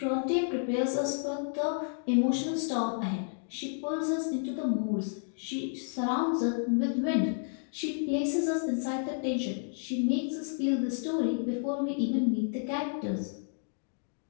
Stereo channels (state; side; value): silent; right; digital silence